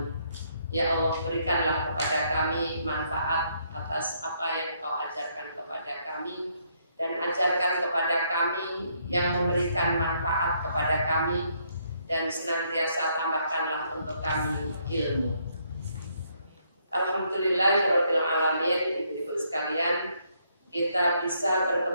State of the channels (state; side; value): inverted; both; correlation -0.71